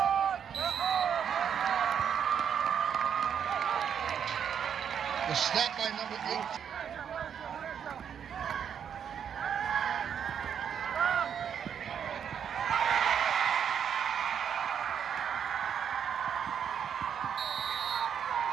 The snap by number 8.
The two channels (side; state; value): left; quieter; 8.1 dB